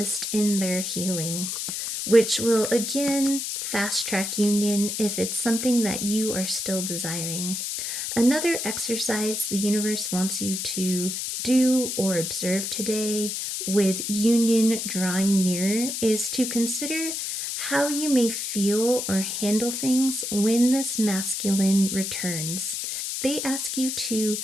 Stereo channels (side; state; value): left; noise; hiss, 3 dB below the sound